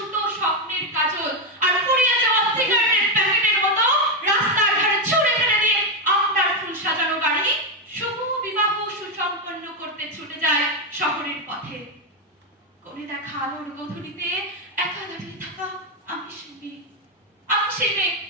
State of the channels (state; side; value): normal; both; correlation 0.06